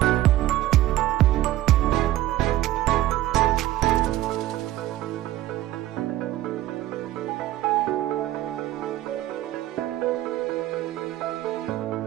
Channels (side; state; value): left; quieter; 14.9 dB